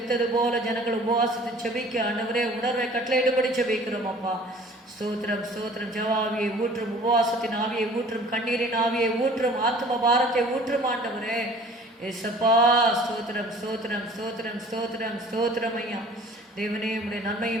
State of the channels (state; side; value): normal; both; correlation 0.49